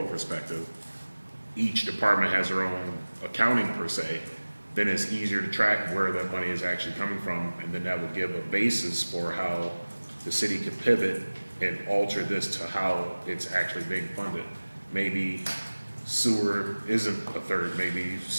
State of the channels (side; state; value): both; inverted; correlation -1.00